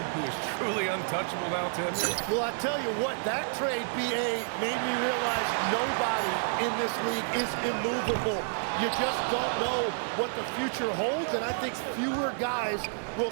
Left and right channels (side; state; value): left; silent; 58 dB below the other